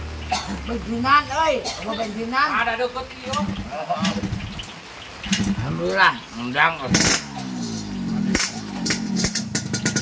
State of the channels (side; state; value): both; identical; correlation 1.00